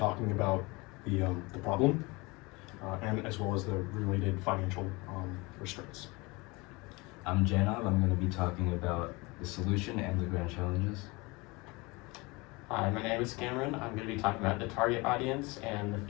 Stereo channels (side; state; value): right; quieter; 25.0 dB